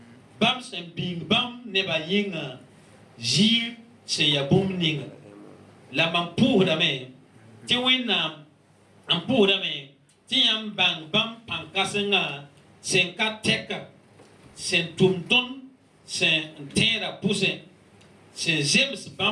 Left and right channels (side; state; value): both; identical; correlation 1.00